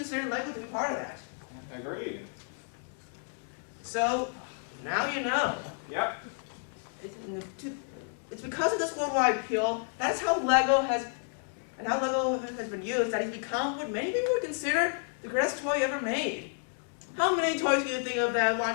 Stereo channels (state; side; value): silent; right; 57 dB below the other